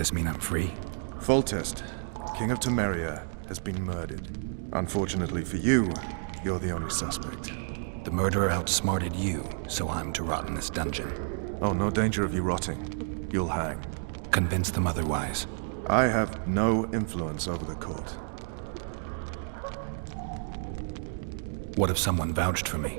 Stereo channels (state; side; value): silent; left; digital silence